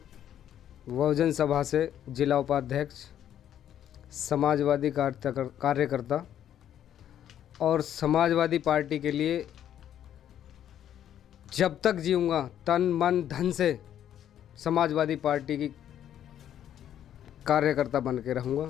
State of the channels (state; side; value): quieter; right; 10.5 dB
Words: बहुजन सभा से जिला उपाध्यक्ष, समाजवादी कार्यकर्ता और समाजवादी पार्टी के लिए जब तक जीऊँगा तन मन धन से समाजवादी पार्टी की कार्यकर्ता बन के रहूँगा,